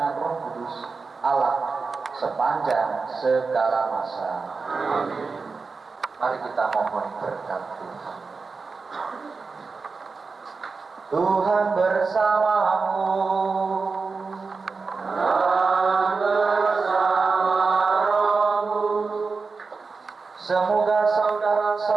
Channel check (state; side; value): quieter; left; 4.5 dB